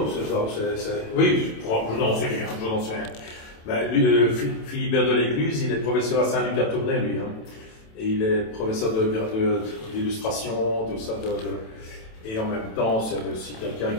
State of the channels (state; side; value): late; right; 27 ms